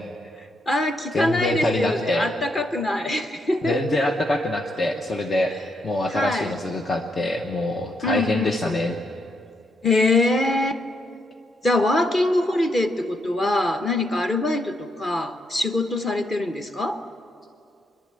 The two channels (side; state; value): both; normal; correlation 0.78